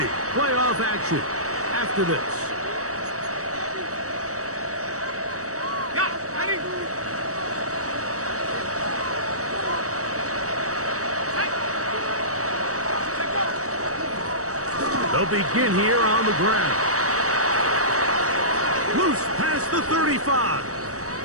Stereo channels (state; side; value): late; left; 0.65 ms